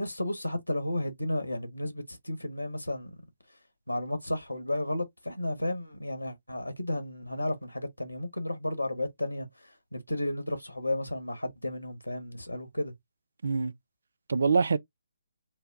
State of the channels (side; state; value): both; inverted; correlation -0.91